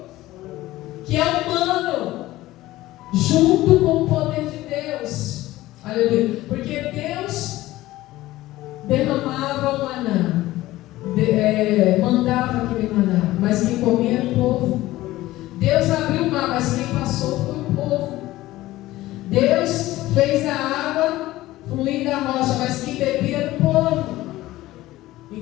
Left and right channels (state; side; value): quieter; right; 16.8 dB